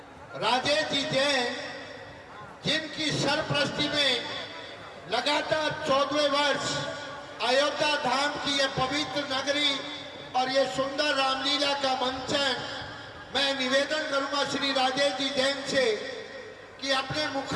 राजेश जी जैन, जिनकी सरपरस्ती में लगातार 14वें वर्ष अयोध्या धाम की यह पवित्र नगरी और ये सुंदर रामलीला का मंचन, मैं निवेदन करूंगा श्री राजेश जी जैन से कि अपने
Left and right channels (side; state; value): both; identical; correlation 1.00